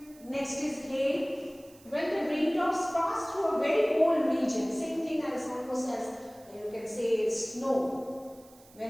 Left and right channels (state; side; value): noise; right; hiss, 25 dB below the sound